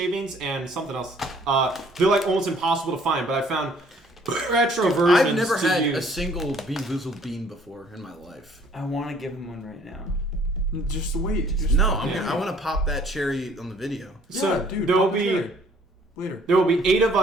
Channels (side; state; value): both; normal; correlation 0.59